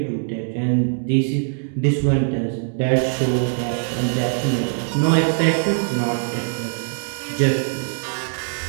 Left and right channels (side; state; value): left; silent; digital silence